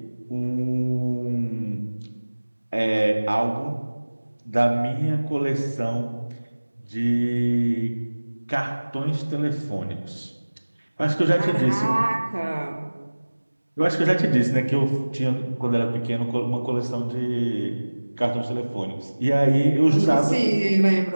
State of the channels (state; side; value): inverted; both; correlation -1.00